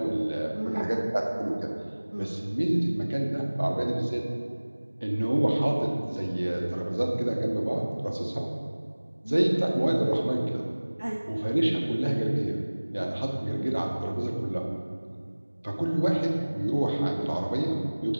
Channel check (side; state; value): both; inverted; correlation -1.00